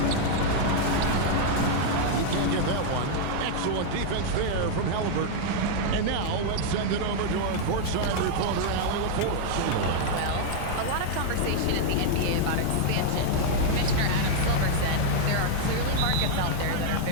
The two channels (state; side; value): different; both; correlation 0.00